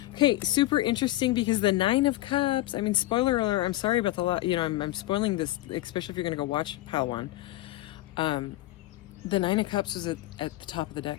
Okay, super interesting, because the Nine of Cups, I mean, spoiler alert, I'm sorry about the lot, you know, I'm spoiling this, especially if you're going to go watch pile 1. The Nine of Cups is at the top of the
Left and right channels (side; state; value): right; quieter; 16.9 dB